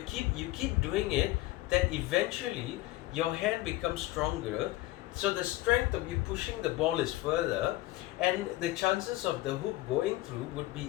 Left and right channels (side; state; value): right; quieter; 17.6 dB